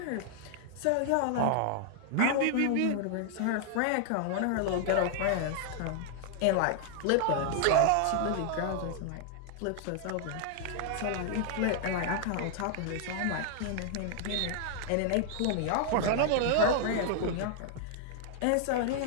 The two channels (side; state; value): both; different; correlation 0.00